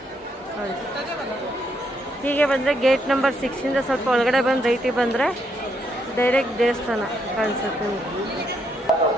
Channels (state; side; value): normal; both; correlation 0.76